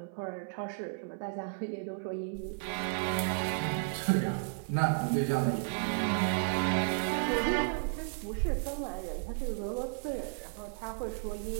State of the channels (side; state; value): left; silent; 55 dB below the other